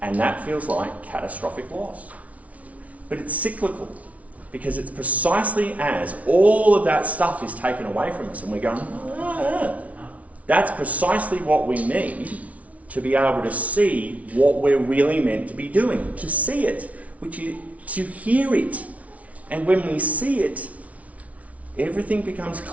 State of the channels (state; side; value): late; left; 0.067 ms